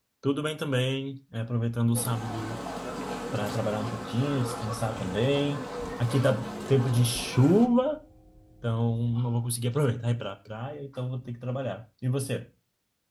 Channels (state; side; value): identical; both; correlation 1.00